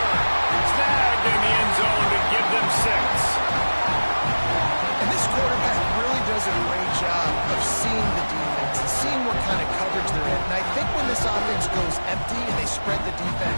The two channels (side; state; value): both; inverted; correlation -1.00